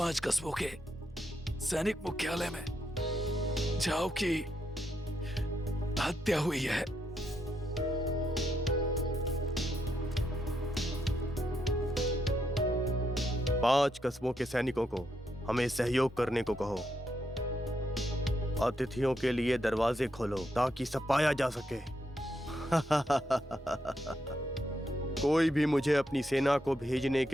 कस्बों के सैनिक मुख्यालय में जाओ की हत्या हुई है। पांच कस्बों के सैनिकों को हमें सहयोग करने को कहो। अतिथियों के लिए दरवाजे खोलो ताकि सपाया जा सके। कोई भी मुझे अपनी सेना को भेजने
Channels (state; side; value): normal; both; correlation 0.80